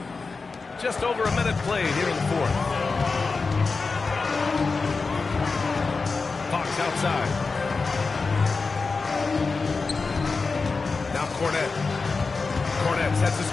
Just over a minute played here in the fourth. Fox outside. Now Cornette. Cornette sets the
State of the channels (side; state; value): right; quieter; 4.3 dB